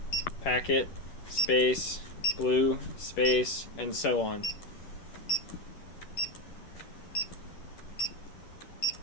packet, space, blue, space, and so on.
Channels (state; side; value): late; right; 10 ms